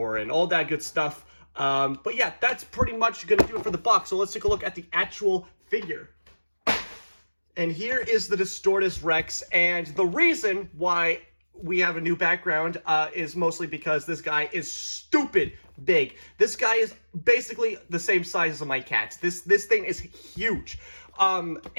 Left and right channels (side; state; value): both; inverted; correlation -1.00